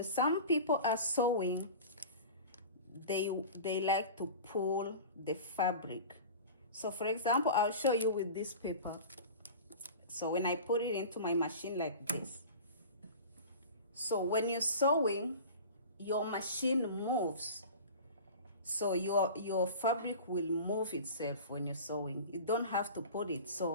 some people are sewing, they like to pull the fabric. So for example, I'll show you with this paper. So when I put it into my machine like this, so when you're sewing, your machine moves. So your fabric will move itself when you're sewing. You don't have to put it.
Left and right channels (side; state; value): both; inverted; correlation -0.36